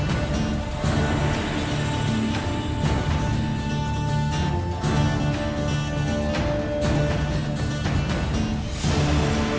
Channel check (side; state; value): both; identical; correlation 1.00